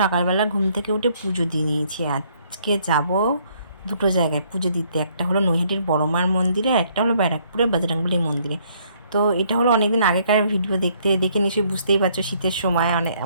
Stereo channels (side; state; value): both; inverted; correlation -0.66